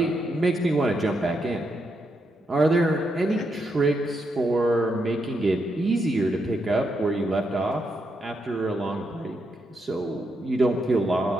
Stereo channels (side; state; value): both; normal; correlation 0.81